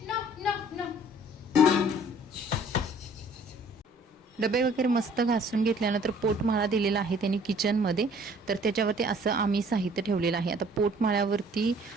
डबे वगैरे मस्त घासून घेतल्यानंतर पोटमाळा दिलेला आहे त्यांनी किचनमध्ये, तर त्याच्यावरती असं आम्ही साहित्य ठेवलेलं आहे. आता पोटमाळ्यावरती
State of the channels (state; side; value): normal; both; correlation 0.56